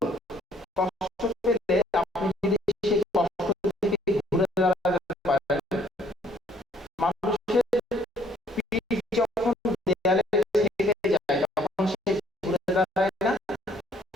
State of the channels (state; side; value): normal; both; correlation 0.63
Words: কষ্ট পেলে আপনি যদি সেই কষ্ট থেকে ঘুরে দাঁড়াতে পারেন, মানুষের পিঠ যখন দেয়ালে ঠেকে যায় তখন সে ঘুরে দাঁড়ায় না,